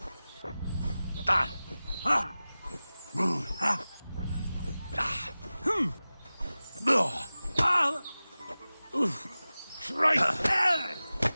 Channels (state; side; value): inverted; both; correlation -0.97